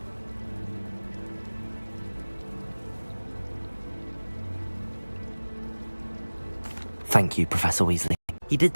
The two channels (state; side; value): inverted; both; correlation -1.00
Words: Thank you, Professor Weasley. You did,